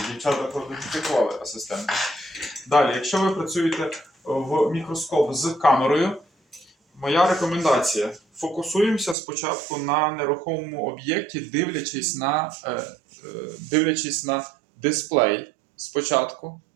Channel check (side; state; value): left; drops out; at 9.2 s